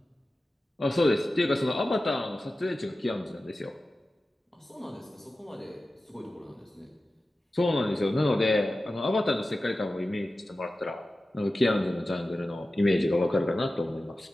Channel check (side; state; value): both; normal; correlation 0.95